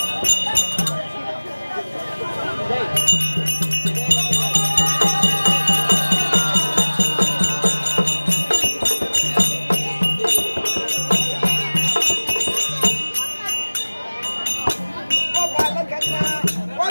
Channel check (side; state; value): both; inverted; correlation -1.00